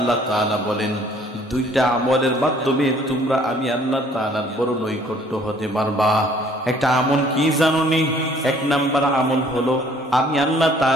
তাআলা বলেন দুইটা আমলের মাধ্যমে তোমরা আমি আল্লাহ তাআলার বড় নৈকট্য হতে পারবা। একটা আমল কি জানোনি? এক নাম্বার আমল হলো আমি আল্লাহ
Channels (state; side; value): normal; both; correlation 0.58